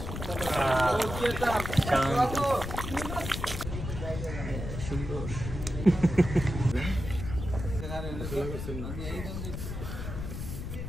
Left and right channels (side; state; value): left; noise; rumble, 6 dB below the sound